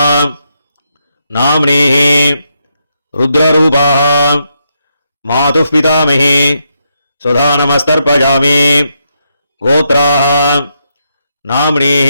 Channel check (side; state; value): both; inverted; correlation -0.81